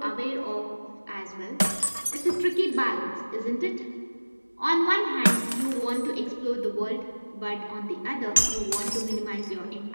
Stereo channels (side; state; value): both; inverted; correlation -1.00